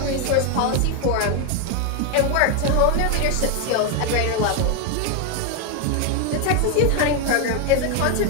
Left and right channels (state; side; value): different; both; correlation 0.01